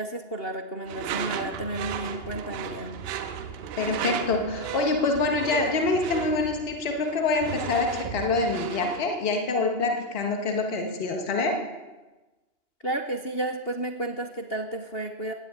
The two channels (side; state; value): right; late; 2.9 ms